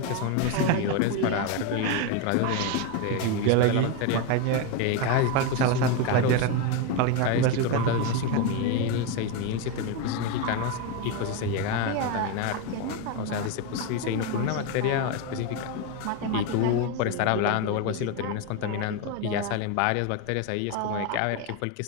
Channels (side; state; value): both; different; correlation 0.02